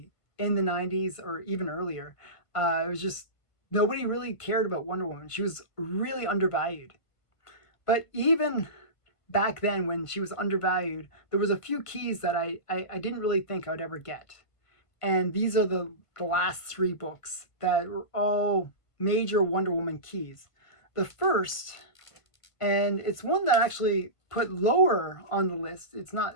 in the '90s or even earlier. It was just nobody really cared about Wonder Woman. She was really undervalued. But even back then, when she was undervalued, there was a few keys that I didn't really think I would ever get. And these are the last three books that were all major Wonder Woman keys. The first, and it's one that I actually put lower on the list, it's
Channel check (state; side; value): late; right; 1.5 ms